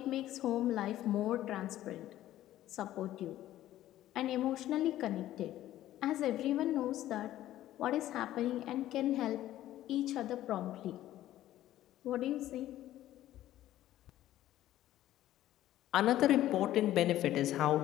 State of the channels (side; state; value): right; quieter; 13.7 dB